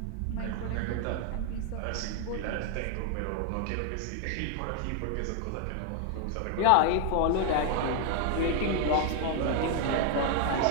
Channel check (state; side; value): different; both; correlation 0.00